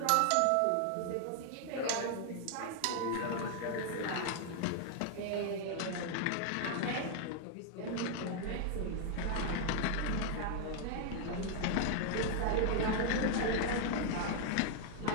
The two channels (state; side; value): different; both; correlation 0.00